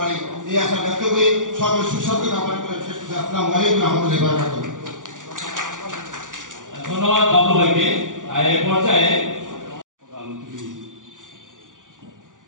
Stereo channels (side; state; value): left; late; 0.88 ms